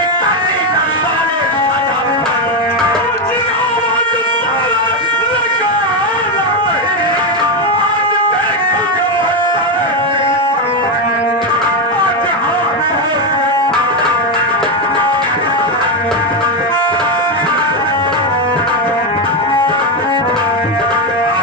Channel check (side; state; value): both; normal; correlation 0.09